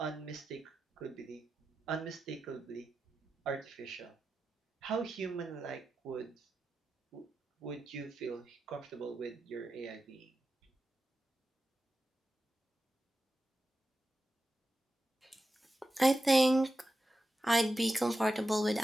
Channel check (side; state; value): both; normal; correlation 0.91